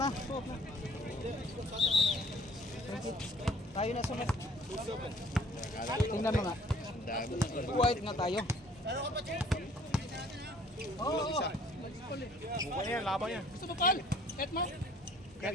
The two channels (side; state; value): both; normal; correlation 0.56